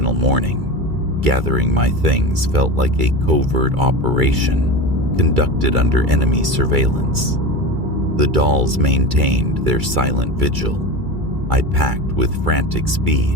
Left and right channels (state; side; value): late; left; 2.3 ms